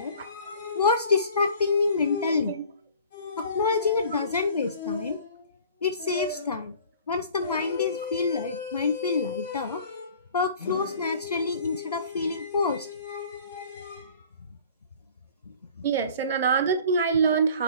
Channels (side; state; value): both; inverted; correlation -0.48